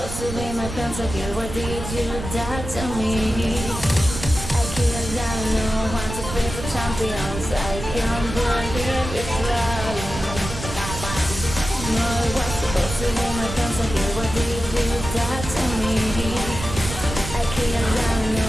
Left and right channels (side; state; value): right; noise; rumble, 8 dB below the sound